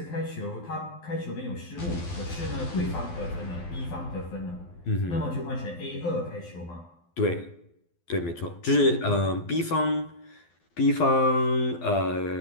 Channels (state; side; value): late; right; 12 ms